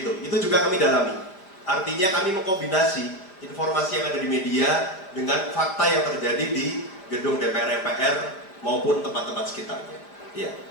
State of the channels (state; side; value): late; right; 5.1 ms